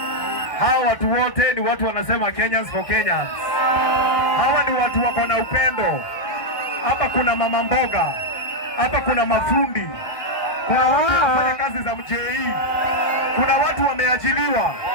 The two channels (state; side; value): late; right; 1.6 ms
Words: Hawa watu wote ni watu wanasema Kenyans for Kenyans. Hawa ni watu wako na upendo. Hapa kuna mama mboga. Hapa kuna mafundi. Kuna watu wanafanya kazi za mjei. Kuna watu wameajiliwa.